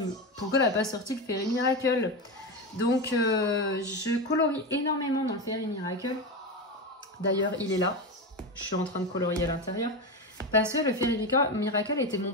pourquoi elle n'a pas sorti le Fairy Miracle? Donc, je colorie énormément dans le Fairy Miracle. D'ailleurs, il est là. Je suis en train de colorier à l'intérieur. Parce que le Fairy Miracle était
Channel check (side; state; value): both; normal; correlation 0.18